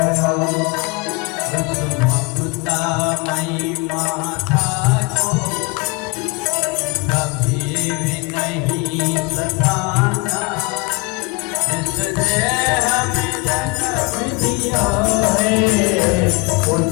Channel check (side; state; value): right; quieter; 27.6 dB